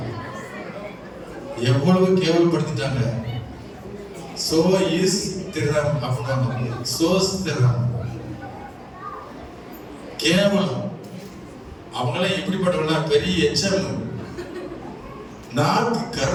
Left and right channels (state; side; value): identical; both; correlation 1.00